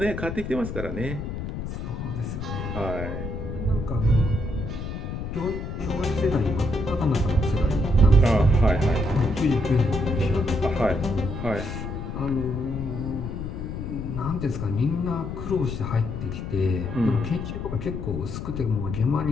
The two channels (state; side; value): noise; left; rumble, 6 dB below the sound